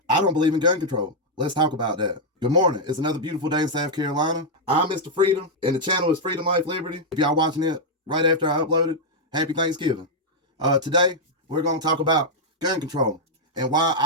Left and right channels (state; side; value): normal; both; correlation -0.03